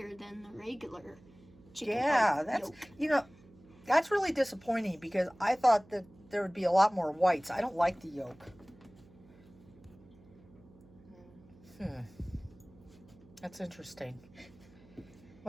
than the regular chicken. Yeah, that's that's really disappointing because I thought that there would be a lot more whites. I don't like the yolk. That's interesting.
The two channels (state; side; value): noise; right; hum, 24 dB below the sound